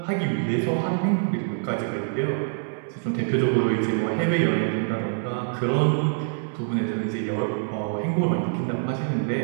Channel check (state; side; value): silent; left; 62 dB below the other